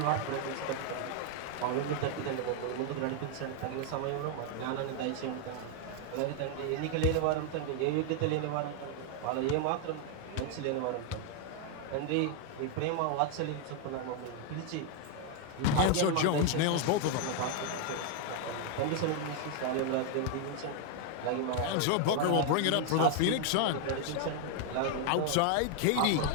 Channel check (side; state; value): both; different; correlation 0.00